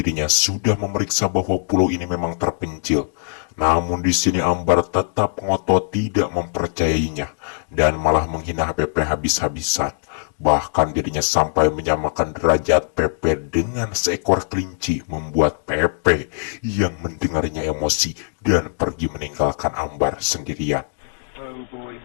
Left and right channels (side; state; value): right; silent; 59 dB below the other